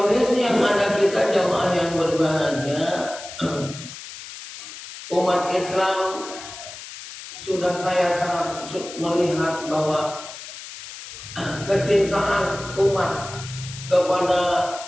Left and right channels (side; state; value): left; noise; hiss, 13 dB below the sound